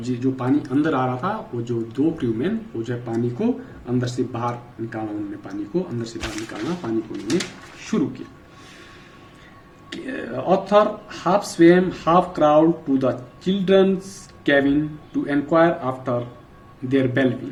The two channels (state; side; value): identical; both; correlation 1.00